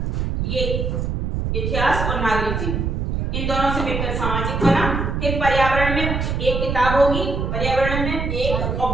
ये इतिहास और नागरिक जीवन, इन दोनों से मिलकर सामाजिक बना। फिर पर्यावरण में एक किताब होगी, पर्यावरण में एक, और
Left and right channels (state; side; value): noise; right; rumble, 1 dB below the sound